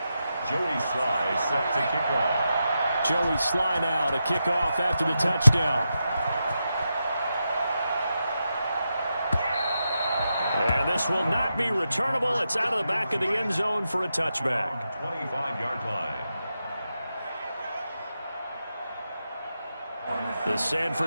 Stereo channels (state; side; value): inverted; both; correlation -0.87